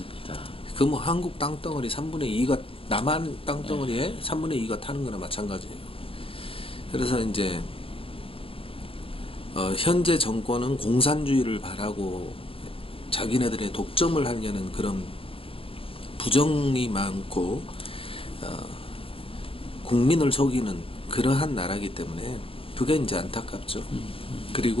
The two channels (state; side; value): late; right; 0.27 ms